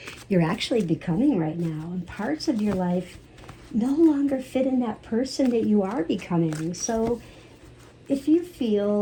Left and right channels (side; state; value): both; identical; correlation 1.00